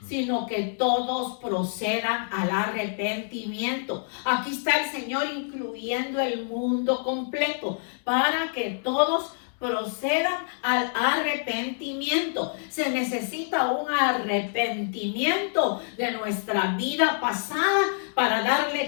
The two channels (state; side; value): silent; right; digital silence